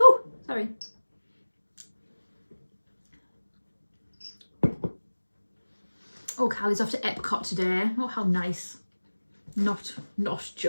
sorry. Oh, Callie's off to Epcot today. Oh, how nice. Not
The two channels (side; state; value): both; inverted; correlation -1.00